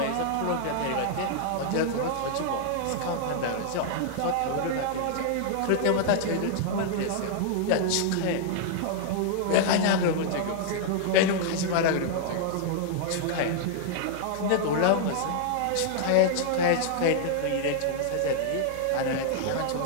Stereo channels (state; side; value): different; both; correlation -0.01